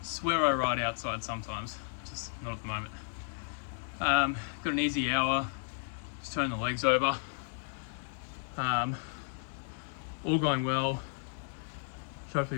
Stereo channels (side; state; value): right; silent; digital silence